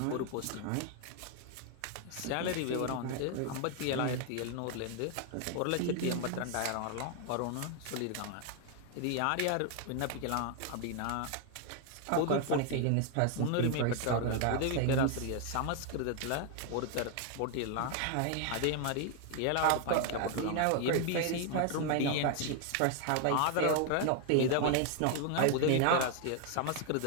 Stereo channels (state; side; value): different; both; correlation 0.00